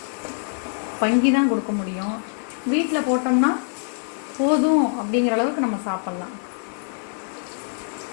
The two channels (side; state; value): right; silent; digital silence